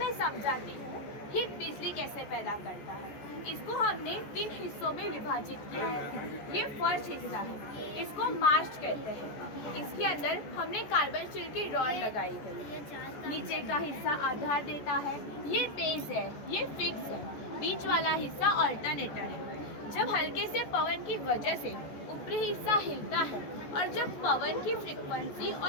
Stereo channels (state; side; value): late; right; 14 ms